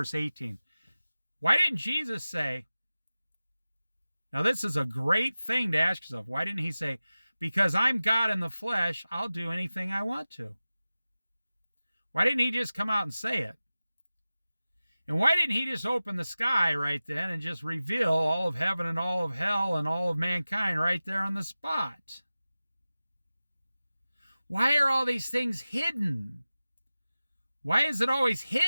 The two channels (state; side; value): inverted; both; correlation -0.96